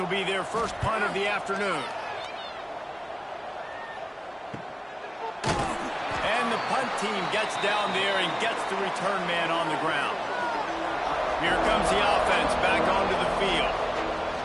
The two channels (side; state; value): both; identical; correlation 1.00